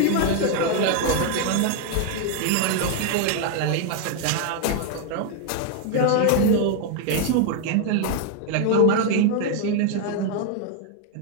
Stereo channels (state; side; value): different; both; correlation 0.00